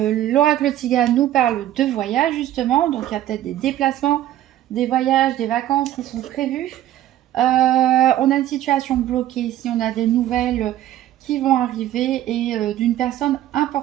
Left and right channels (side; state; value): left; quieter; 13.0 dB